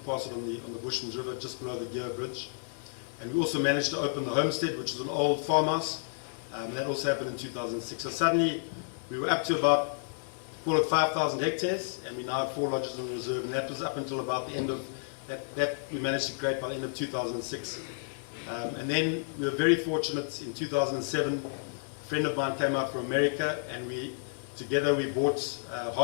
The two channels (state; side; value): silent; right; digital silence